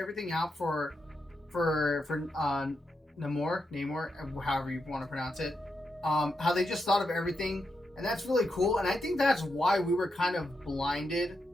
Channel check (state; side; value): normal; both; correlation 0.85